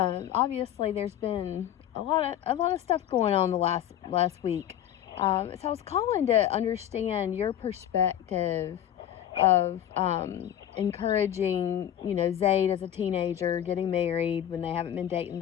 there's been a lot of stuff going on the last week. So I was calling to understand your perspective of encouraging, Zaid as a teenager, getting married when they haven't been dating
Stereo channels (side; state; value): right; quieter; 10.9 dB